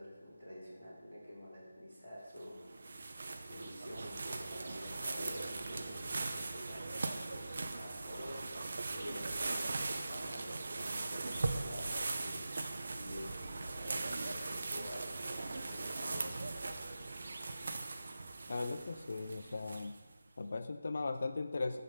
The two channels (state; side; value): inverted; both; correlation -0.93